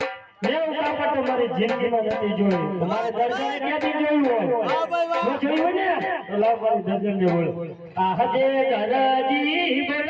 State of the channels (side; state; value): both; identical; correlation 1.00